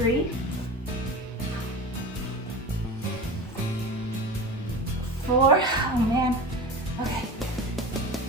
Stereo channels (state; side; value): normal; both; correlation 0.31